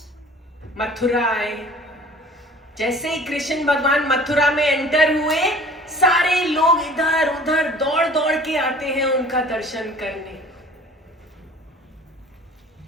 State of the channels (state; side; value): normal; both; correlation 0.47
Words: मथुरा आए। जैसे ही कृष्ण भगवान मथुरा में एंटर हुए, सारे लोग इधर उधर दौड़ दौड़ के आते हैं उनका दर्शन करने।